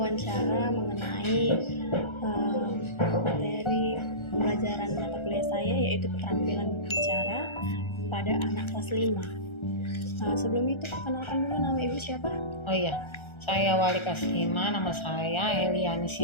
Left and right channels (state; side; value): late; right; 1.3 ms